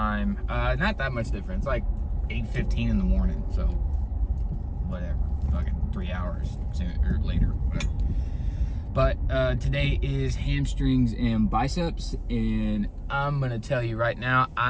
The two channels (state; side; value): identical; both; correlation 1.00